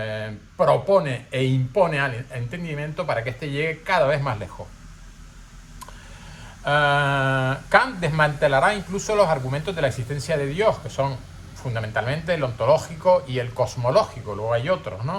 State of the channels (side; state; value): both; identical; correlation 1.00